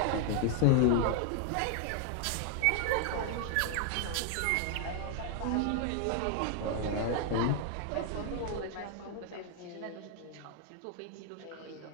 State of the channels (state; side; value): different; both; correlation 0.00